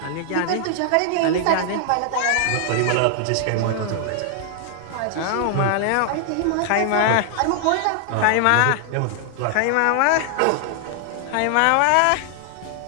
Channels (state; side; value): different; both; correlation 0.00